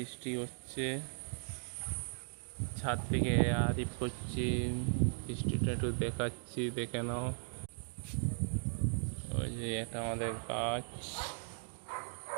হচ্ছে। ছাদ থেকে আরিফ করছি, বৃষ্টিটা একটু দেখাচ্ছি, দেখে নাও। ওই যে এটা আমাদের গাছ,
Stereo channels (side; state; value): left; silent; digital silence